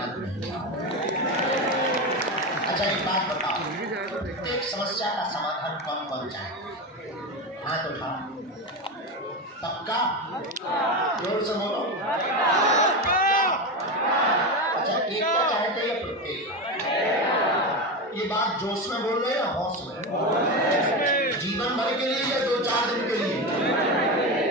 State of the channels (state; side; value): normal; both; correlation 0.18